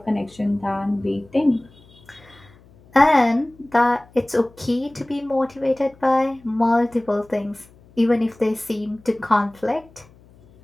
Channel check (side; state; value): left; noise; hum, 27 dB below the sound